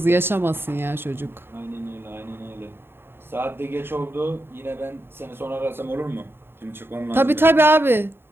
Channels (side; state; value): left; late; 0.11 ms